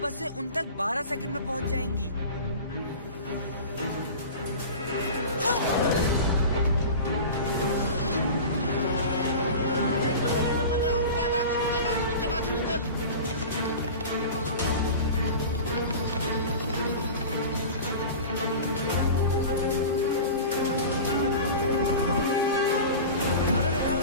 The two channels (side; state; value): both; inverted; correlation -0.34